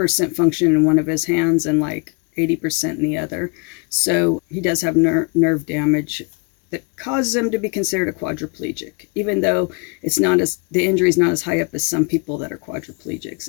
function in one of his hands and like 80% in the other. So he does have nerve damage that causes him to be considered a quadriplegic, even though the injury is not as high up as some people that are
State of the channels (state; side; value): quieter; right; 32.1 dB